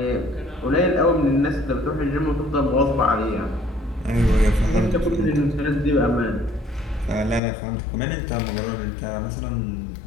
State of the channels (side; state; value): right; drops out; at 7.4 s